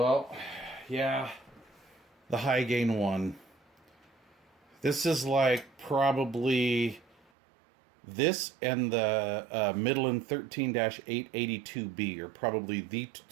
yeah. The high gain one. This is like probably this and the Midland 13-882B are probably the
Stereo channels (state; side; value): drops out; left; at 7.2 s